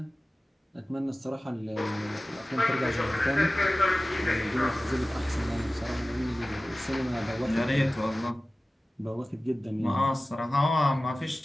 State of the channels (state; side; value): normal; both; correlation 0.97